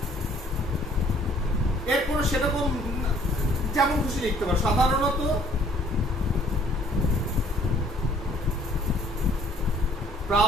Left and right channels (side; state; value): both; normal; correlation 0.59